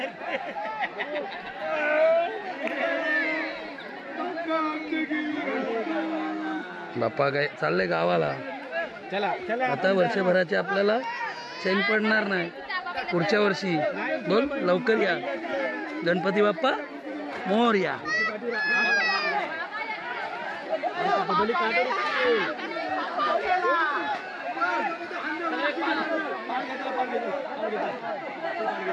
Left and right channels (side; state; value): both; identical; correlation 1.00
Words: बाप्पा काय चाललंय गावाला. चला चला आता वर्षभराचे आपल्याला चैन पडणार नाही. पुढच्या वर्षी बोल लवकर या. गणपती बाप्पा मोरया.